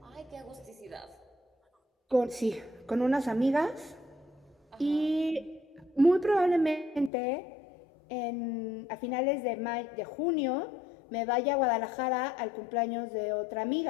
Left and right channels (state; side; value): drops out; right; at 7.1 s